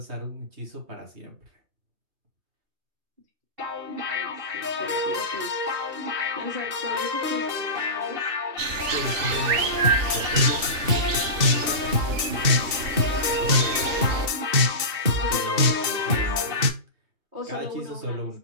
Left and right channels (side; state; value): left; late; 2.7 ms